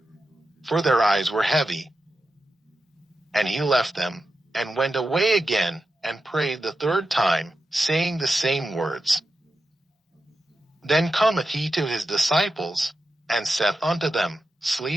for their eyes were heavy. And he left them, and went away again, and prayed the 3rd time, saying the same words. Then cometh he to his disciples, and saith unto them,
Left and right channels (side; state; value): both; normal; correlation 0.90